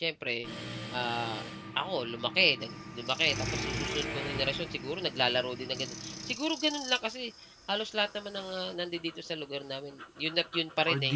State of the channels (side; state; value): both; identical; correlation 1.00